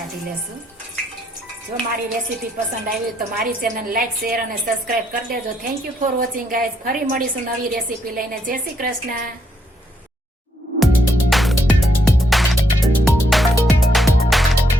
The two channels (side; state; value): both; normal; correlation 0.75